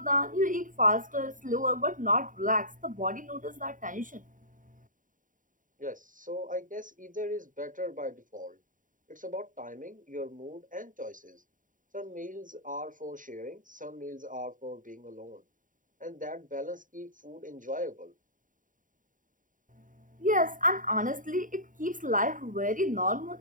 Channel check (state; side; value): late; left; 0.38 ms